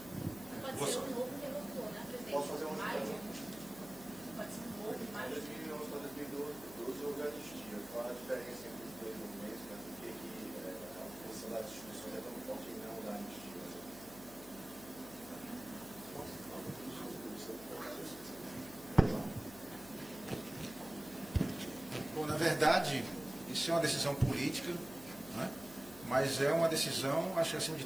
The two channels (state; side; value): noise; left; hum, 18 dB below the sound